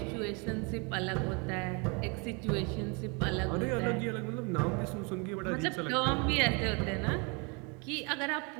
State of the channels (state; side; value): quieter; left; 31.9 dB